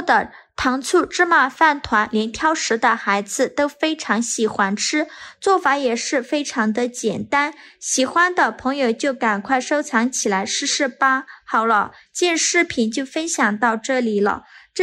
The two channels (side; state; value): both; identical; correlation 1.00